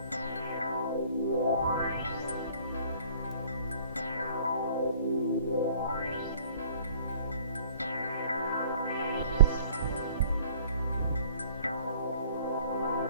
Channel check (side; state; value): both; inverted; correlation -0.53